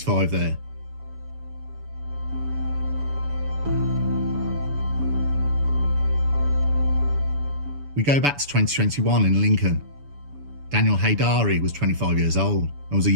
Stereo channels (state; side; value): late; left; 7.0 ms